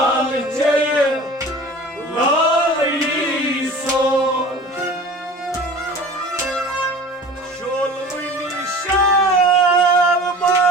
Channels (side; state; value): both; normal; correlation 0.41